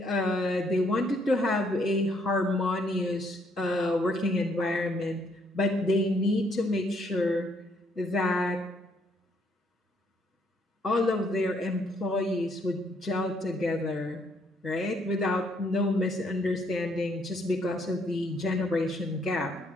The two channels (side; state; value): both; normal; correlation 0.70